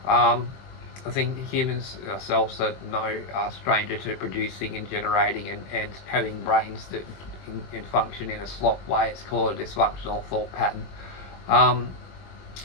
I think humans ourselves are no stranger to producing and generating and having brains that can function in a slop way. It's called a dysfunctional thought pattern.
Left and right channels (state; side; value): late; right; 21 ms